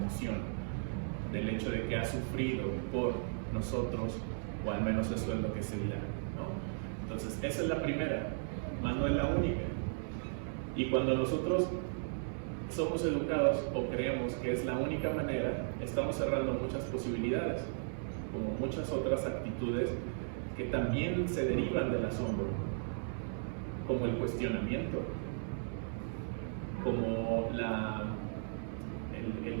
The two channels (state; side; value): silent; left; 54 dB below the other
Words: del hecho de que ha sufrido por nosotros, o al menos eso es lo que se dirá, ¿no? Entonces esa es la primera, más no es la única. Y cuando nosotros somos educados o creemos que es la única manera, estamos cerrando muchas posibilidades, como muchas otras actitudes que también se derivan del asombro, como el cuestionamiento, como